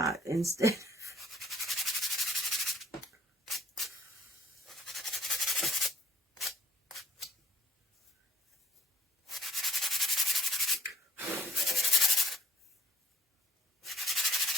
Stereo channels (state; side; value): normal; both; correlation 0.63